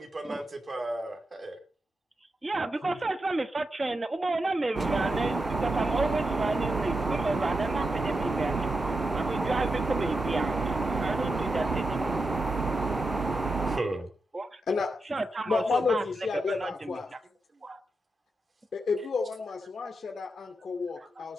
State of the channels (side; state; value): both; normal; correlation 0.87